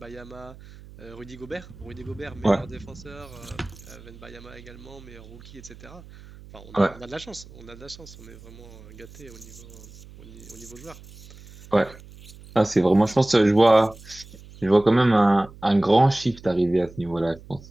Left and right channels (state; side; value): noise; right; hum, 19 dB below the sound